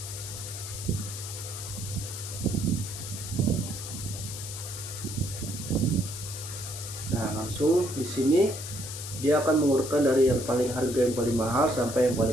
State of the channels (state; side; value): noise; left; hiss, 9 dB below the sound